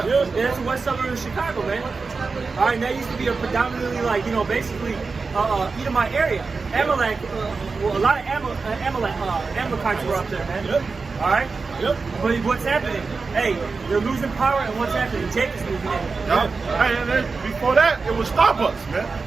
That's the west suburb of Chicago, man. All right, and that used to be a predominantly, like, you know, basically Edomite area. Amalek, a lot of Amalekites were up there, man. Yep. All right? Yep. But what's happening? Hey, they're losing power, and what's happening? Jake is losing it. Yeah. Hey, and then before that, it was Starbucks, man.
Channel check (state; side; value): quieter; left; 4.4 dB